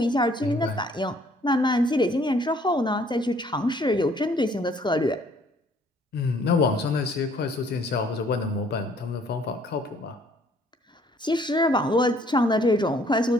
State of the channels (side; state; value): both; normal; correlation 0.61